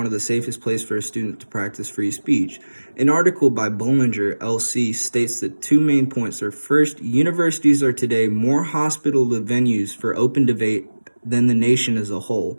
of the safest places for a student to practice free speech. An article by Bollinger, LC, states that two main points are: first, universities are today more hospitable venues for open debate than the nation as a whole.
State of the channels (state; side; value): inverted; both; correlation -1.00